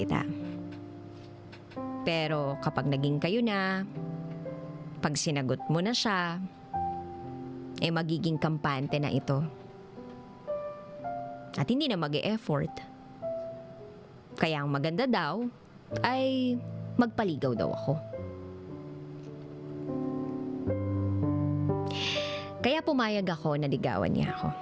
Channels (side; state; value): both; identical; correlation 1.00